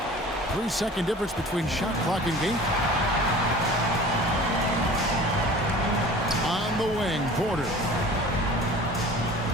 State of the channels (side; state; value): both; normal; correlation 0.43